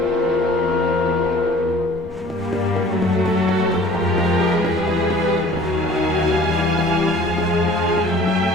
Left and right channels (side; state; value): both; normal; correlation 0.50